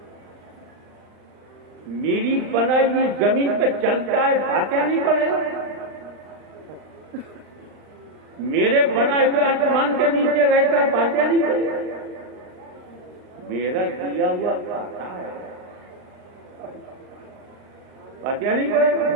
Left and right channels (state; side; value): late; left; 39 ms